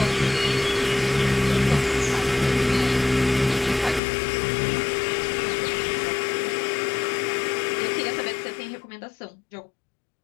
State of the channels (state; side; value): drops out; right; at 4.0 s